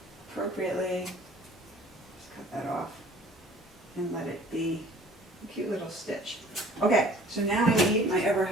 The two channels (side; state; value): both; normal; correlation 0.52